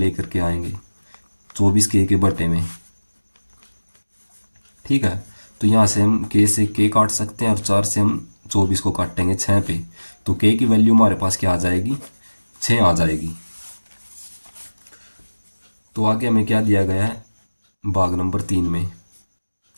करके आएंगे 24 के बटे में। ठीक है, तो यहाँ से हम के से के काट सकते हैं, और 4 से हम 24 को काटेंगे 6 पे, तो के की वैल्यू हमारे पास क्या आ जाएगी, 6 आ जाएगी। तो आगे हमें क्या दिया गया है, भाग नंबर 3 में,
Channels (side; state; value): both; inverted; correlation -1.00